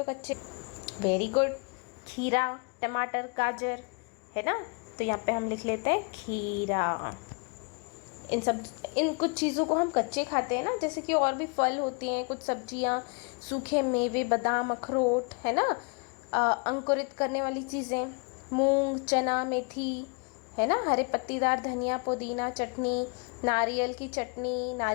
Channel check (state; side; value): quieter; right; 33.5 dB